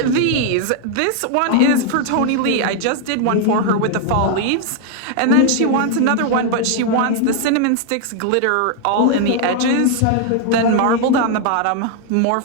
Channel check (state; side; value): different; both; correlation 0.00